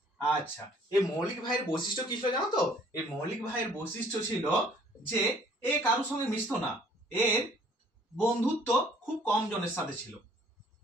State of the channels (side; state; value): both; normal; correlation 0.58